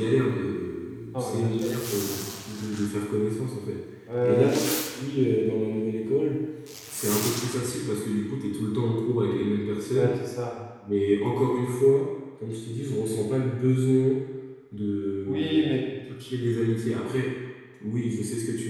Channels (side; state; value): both; identical; correlation 1.00